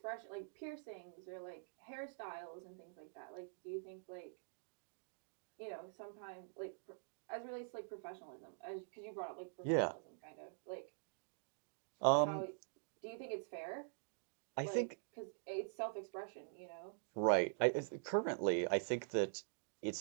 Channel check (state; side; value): silent; left; digital silence